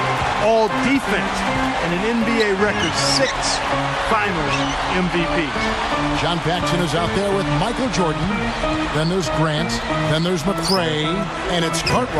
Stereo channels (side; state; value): both; identical; correlation 1.00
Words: All-Defense, and an NBA record 6 Finals MVPs. John Paxson is out there with Michael Jordan. Then there's Grant. Then there's McRae. And it's